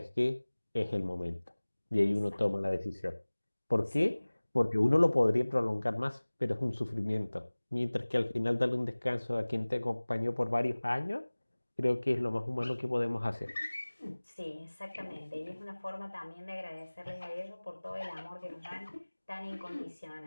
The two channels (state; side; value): inverted; both; correlation -1.00